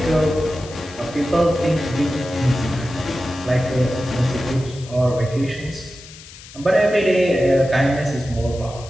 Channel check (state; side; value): noise; left; hiss, 18 dB below the sound